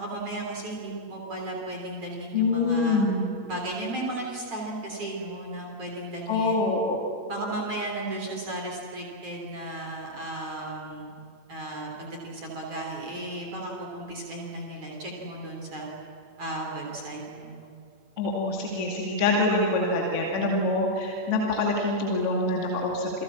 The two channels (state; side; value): late; left; 8.3 ms